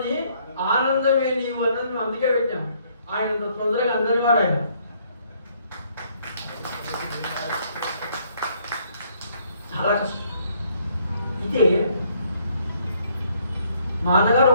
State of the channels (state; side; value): inverted; both; correlation -0.67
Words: ఆనందమే నీవు అన్నది మేము అందుకే పెట్టాం. ఆయన తొందరగా అందరి వాడు ఆయన. చాలా కష్టం. ఇదే మా అన్నగారు